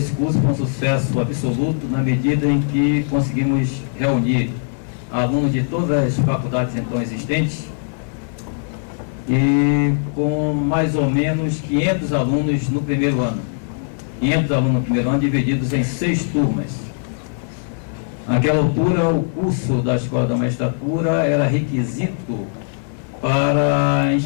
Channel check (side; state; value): right; silent; digital silence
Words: curso foi um sucesso absoluto na medida em que conseguimos reunir alunos de todas as faculdades então existentes e com mais ou menos 500 alunos no primeiro ano. 500 alunos no primeiro ano divididos em 6 turmas. Naquela altura, o curso da Escola da Magistratura era requisito para